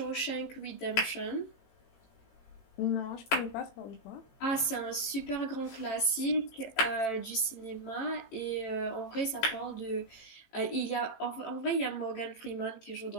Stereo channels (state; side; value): late; right; 18 ms